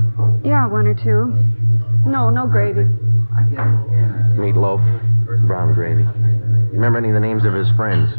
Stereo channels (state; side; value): inverted; both; correlation -1.00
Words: Yeah, 1 or 2. No gravy. Meatloaf, brown gravy. You remember any of the names of his friends?